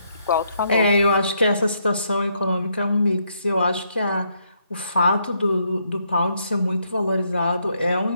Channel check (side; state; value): both; inverted; correlation -0.74